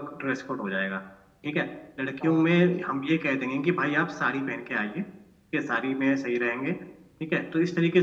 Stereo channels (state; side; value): identical; both; correlation 1.00